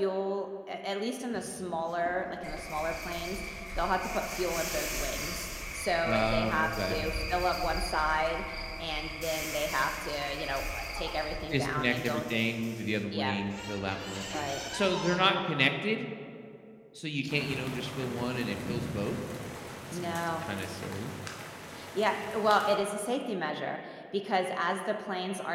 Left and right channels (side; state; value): both; identical; correlation 1.00